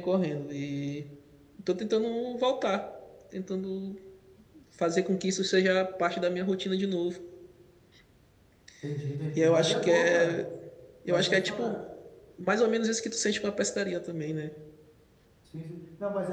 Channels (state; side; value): identical; both; correlation 1.00